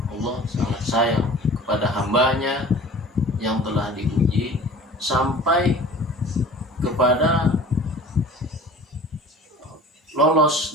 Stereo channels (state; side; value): normal; both; correlation 0.44